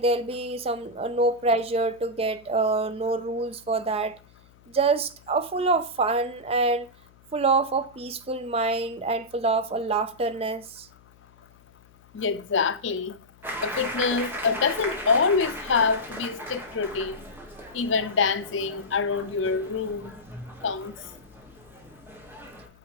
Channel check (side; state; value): left; noise; hum, 27 dB below the sound